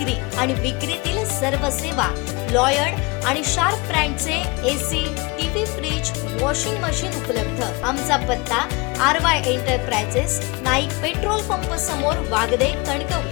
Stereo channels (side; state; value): right; quieter; 26.4 dB